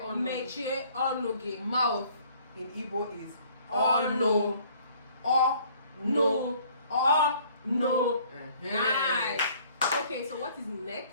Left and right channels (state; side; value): inverted; both; correlation -0.57